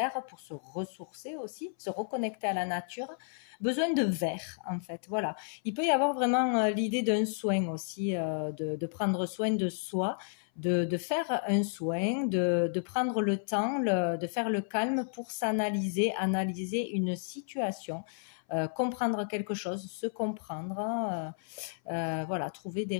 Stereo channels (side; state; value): right; silent; 56 dB below the other